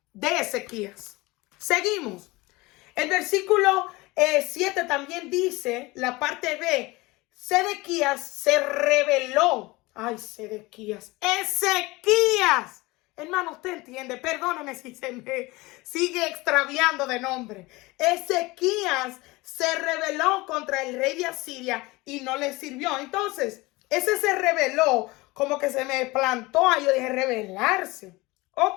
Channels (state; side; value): quieter; right; 22.2 dB